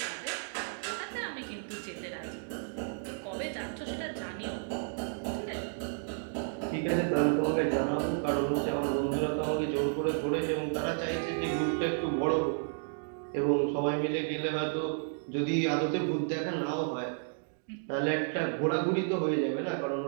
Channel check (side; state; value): left; silent; digital silence